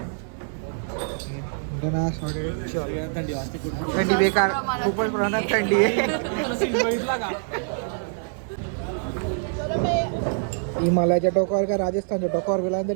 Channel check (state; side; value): silent; left; 62 dB below the other